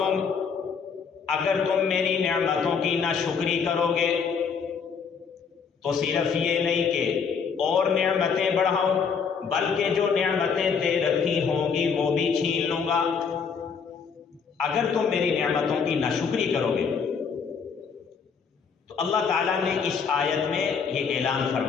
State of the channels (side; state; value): right; quieter; 6.1 dB